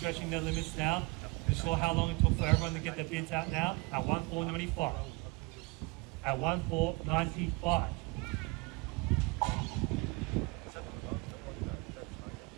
their limits now. You saw how long it took for everyone to get their bids out now. At 1,495. At 1,495.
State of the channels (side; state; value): left; quieter; 26.7 dB